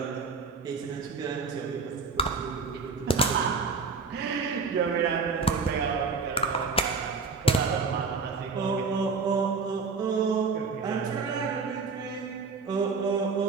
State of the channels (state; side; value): quieter; left; 4.7 dB